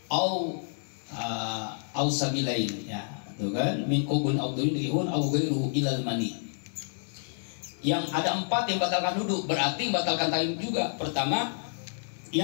aw sabilain, ya. Tuh kan, min qablin aw duburin rihun aw ghairuhu ilal mani. Yang ada 4 yang batalkan wudu, berarti batalkan tayyib juga. Pertama,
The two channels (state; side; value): silent; right; digital silence